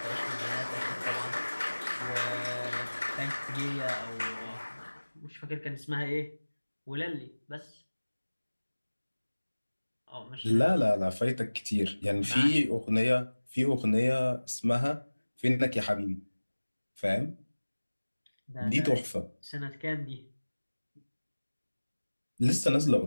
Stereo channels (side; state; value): both; inverted; correlation -1.00